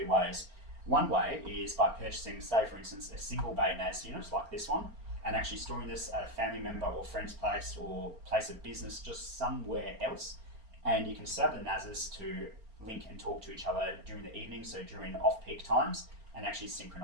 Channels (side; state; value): left; late; 4.4 ms